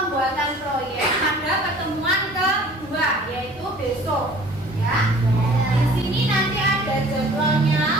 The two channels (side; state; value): both; normal; correlation 0.49